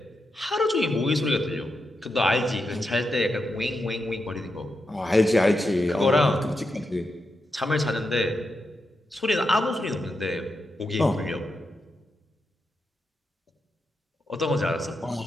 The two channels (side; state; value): both; normal; correlation 0.86